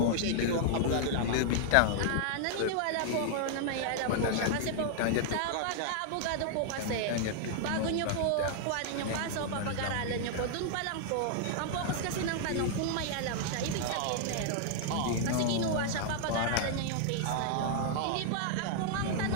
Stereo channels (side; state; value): both; different; correlation -0.01